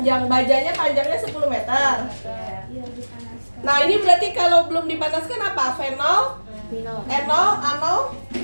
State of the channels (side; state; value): both; inverted; correlation -1.00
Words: Bajanya panjangnya 10 meter. Iya, dipanaskan. Nah, ini berarti kalau belum dipanaskan apa? Fenol? Enol? Anol?